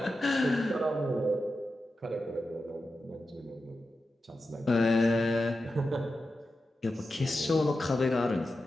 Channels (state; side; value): normal; both; correlation 0.91